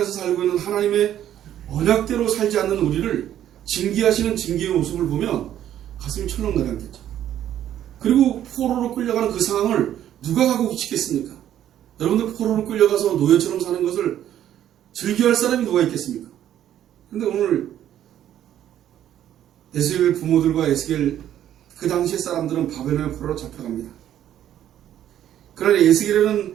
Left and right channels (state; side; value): quieter; left; 11.2 dB